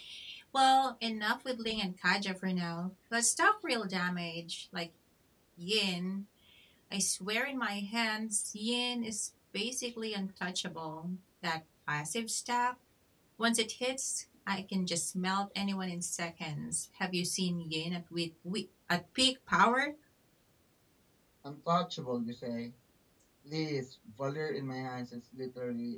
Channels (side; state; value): both; identical; correlation 1.00